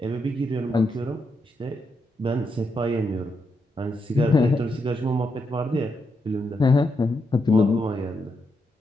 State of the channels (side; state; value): both; normal; correlation 0.82